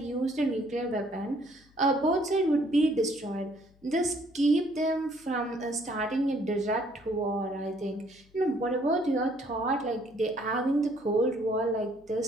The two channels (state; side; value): noise; left; hum, 29 dB below the sound